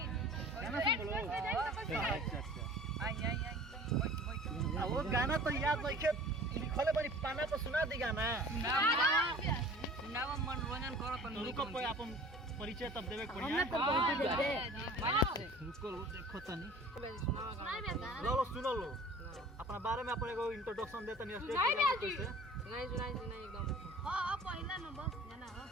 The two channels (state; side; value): normal; both; correlation 0.45